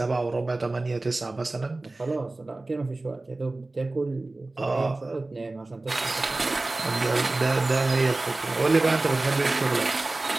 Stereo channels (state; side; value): quieter; left; 3.0 dB